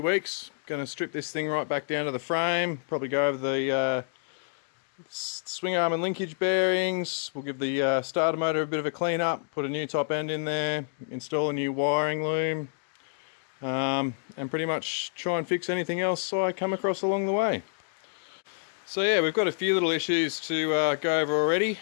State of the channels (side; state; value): right; silent; digital silence